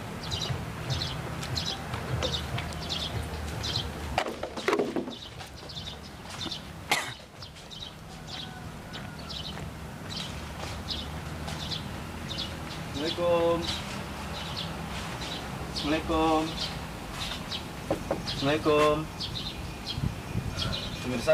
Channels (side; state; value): both; identical; correlation 1.00